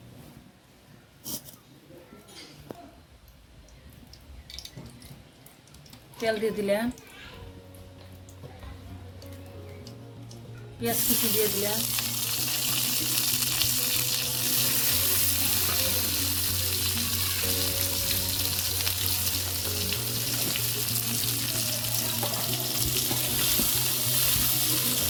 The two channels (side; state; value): both; identical; correlation 1.00